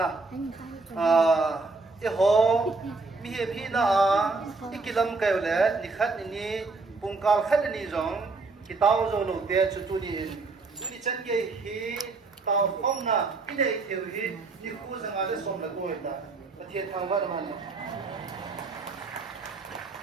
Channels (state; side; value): quieter; left; 3.8 dB